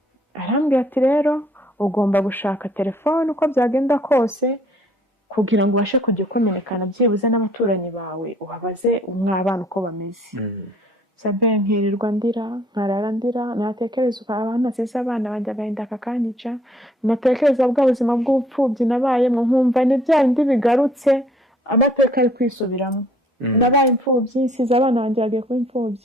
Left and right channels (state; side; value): normal; both; correlation 0.60